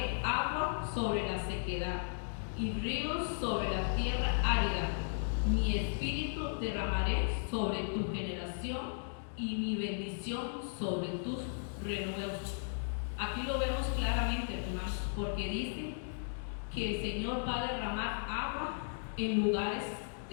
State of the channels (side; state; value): right; silent; digital silence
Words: agua sobre la sequedad y ríos sobre la tierra árida. Mi espíritu derramaré sobre tu generación y mi bendición sobre tus renuevos. Aquí lo vemos claramente, hermanos, porque dice que el Señor va a derramar agua en lugares